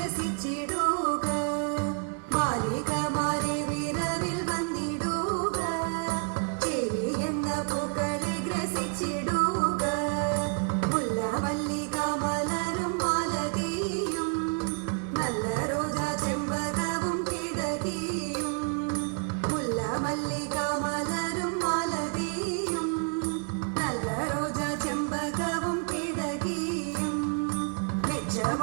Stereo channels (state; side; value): quieter; left; 36.9 dB